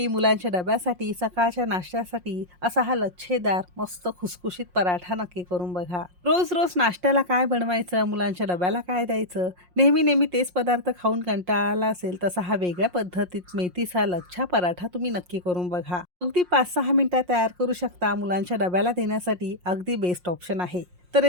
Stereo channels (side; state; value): left; late; 5.6 ms